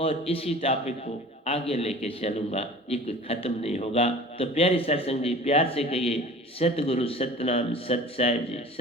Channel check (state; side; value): normal; both; correlation 0.42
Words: और इसी टॉपिक को आगे लेके चलूंगा, ये कोई खत्म नहीं होगा। तो प्यारी सत्संग जी, प्यार से कहिए सतगुरु सतनाम सत साहिब जी,